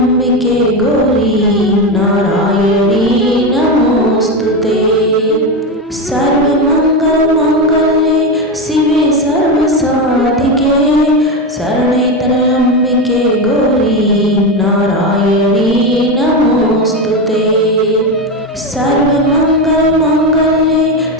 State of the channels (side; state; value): both; normal; correlation 0.15